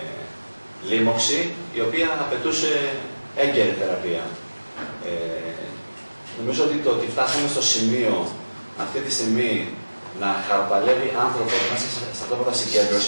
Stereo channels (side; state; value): both; inverted; correlation -1.00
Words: λίμωξη, η οποία απαιτούσε έγκαιρη θεραπεία. Νομίζω ότι το ότι φτάσαμε στο σημείο αυτή τη στιγμή να χαροπαλεύει άνθρωπο μέσα στα στρατόπεδα